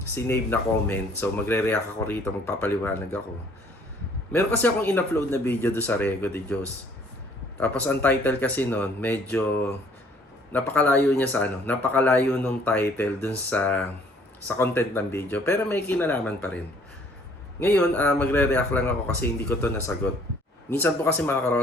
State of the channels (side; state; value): both; normal; correlation 0.59